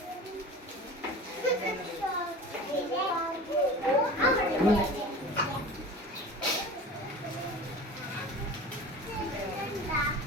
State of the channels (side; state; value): both; normal; correlation 0.36